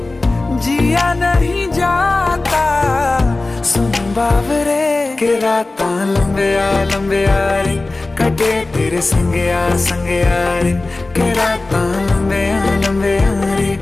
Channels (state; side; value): quieter; right; 3.2 dB